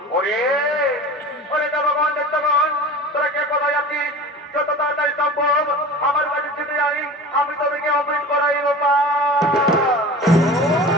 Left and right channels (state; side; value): normal; both; correlation 0.36